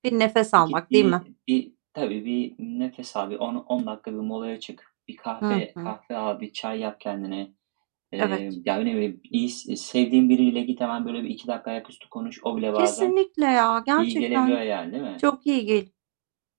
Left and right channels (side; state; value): left; silent; digital silence